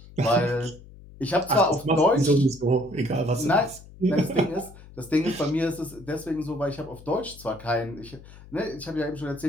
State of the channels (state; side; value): noise; left; hum, 19 dB below the sound